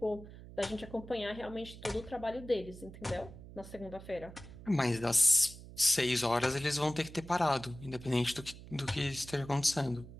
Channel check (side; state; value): right; noise; hum, 15 dB below the sound